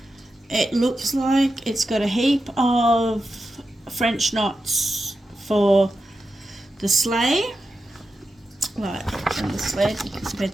It looks like it's got a heap of French knots for the sleigh, like on the sled, you can see where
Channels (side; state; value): both; normal; correlation 0.90